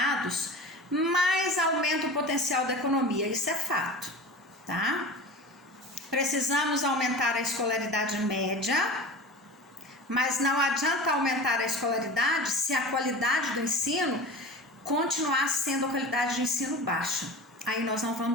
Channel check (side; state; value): both; normal; correlation 0.34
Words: mais aumenta o potencial da economia. Isso é fato, tá? Precisamos aumentar a escolaridade média, mas não adianta aumentar a escolaridade se a qualidade do ensino continuar sendo a qualidade de ensino baixa. Aí nós não